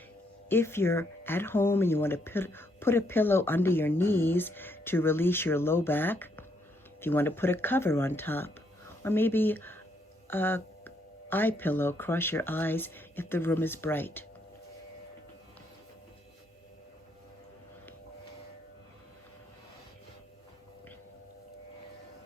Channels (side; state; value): both; normal; correlation 0.74